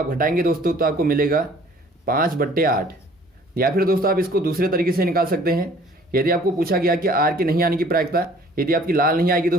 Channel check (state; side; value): normal; both; correlation 0.54